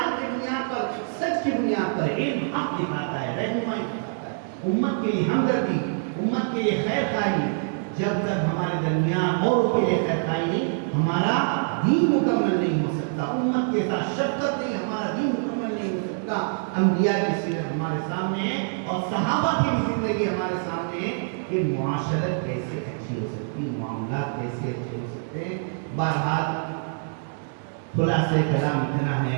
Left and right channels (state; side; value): silent; left; digital silence